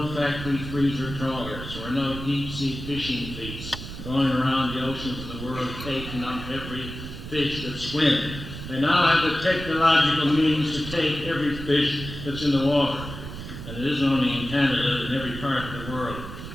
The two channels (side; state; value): right; noise; rumble, 10 dB below the sound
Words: factory freezer trawlers. There were no deep sea fishing fleets going around the oceans of the world taking up every fish that swims. They now have the technological means to take every fish that's in the water. And it isn't only in Canada, in every part of the world